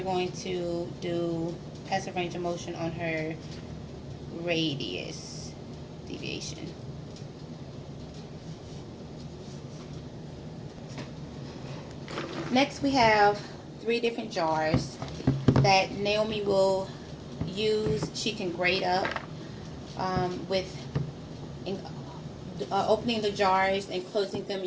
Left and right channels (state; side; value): identical; both; correlation 1.00